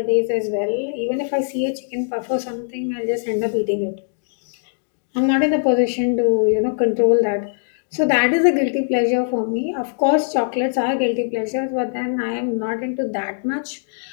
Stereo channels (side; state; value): right; silent; digital silence